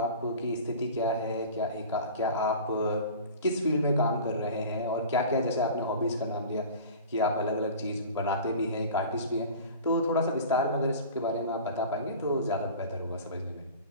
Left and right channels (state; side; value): inverted; both; correlation -0.38